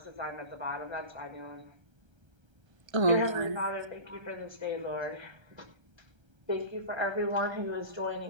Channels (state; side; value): late; left; 1.3 ms